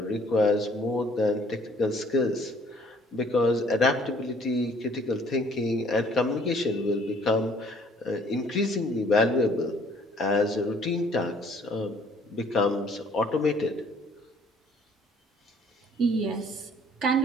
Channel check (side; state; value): both; normal; correlation 0.59